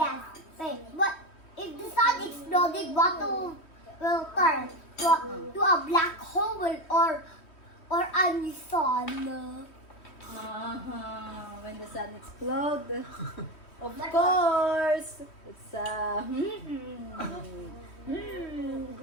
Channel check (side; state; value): right; late; 3.1 ms